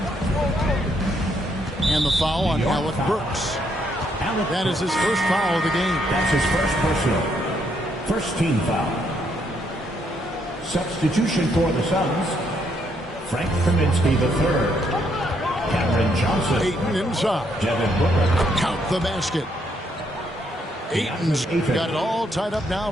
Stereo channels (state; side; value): normal; both; correlation 0.73